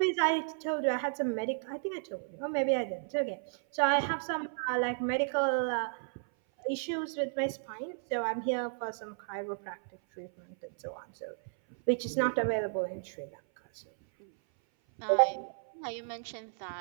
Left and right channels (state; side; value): silent; left; 56 dB below the other